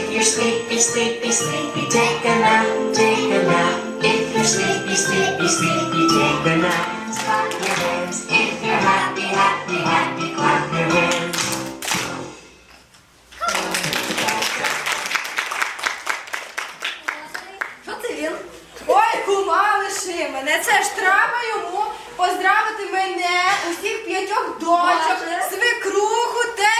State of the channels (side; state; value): both; identical; correlation 1.00